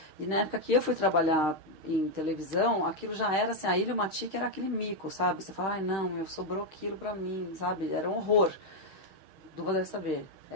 E na época que eu fui trabalhar em televisão, aquilo já era assim, a Ilmatic era aquele mico, sabe? Você fala, não, sobrou aquilo pra mim, sabe? Era um horror. Duva deve saber,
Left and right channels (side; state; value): left; late; 6.4 ms